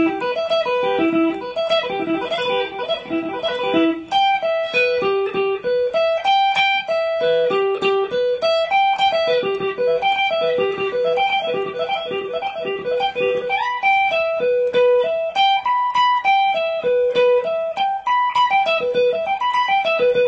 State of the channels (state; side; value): identical; both; correlation 1.00